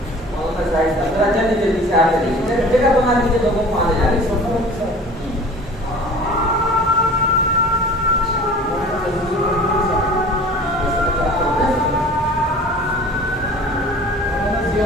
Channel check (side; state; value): both; normal; correlation 0.43